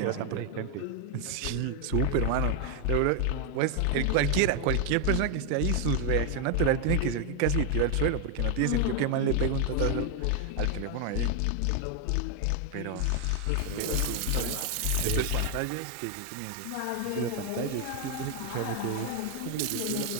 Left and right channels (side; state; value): both; different; correlation 0.01